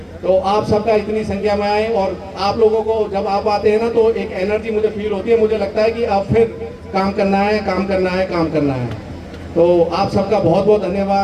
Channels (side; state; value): both; identical; correlation 1.00